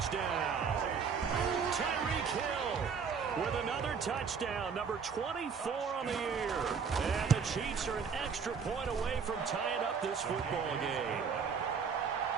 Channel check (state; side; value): quieter; left; 6.1 dB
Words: Tyreek Hill with another touchdown, number 24 on the year. And the Chiefs are an extra point away from tying up this football game.